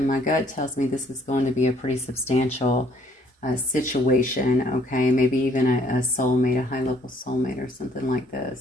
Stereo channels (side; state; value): both; normal; correlation 0.63